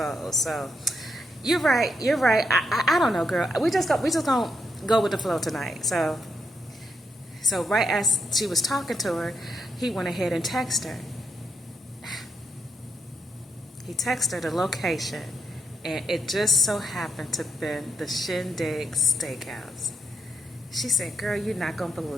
So, you're right. I don't know, girl. We just gonna go with the flow tonight. So right as she was talking to her, he went ahead and texted her. He texted her the location, and it just so happened to be the Shindig Steakhouse. She said, girl, you're not going to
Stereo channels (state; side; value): normal; both; correlation 0.80